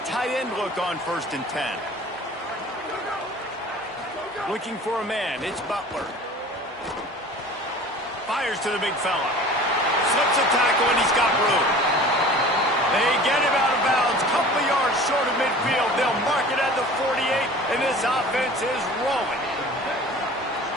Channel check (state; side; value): normal; both; correlation 0.43